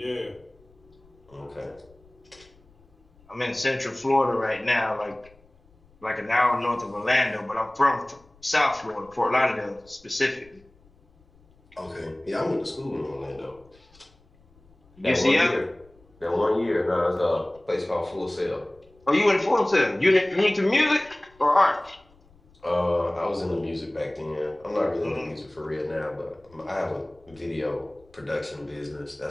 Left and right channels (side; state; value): left; noise; rumble, 29 dB below the sound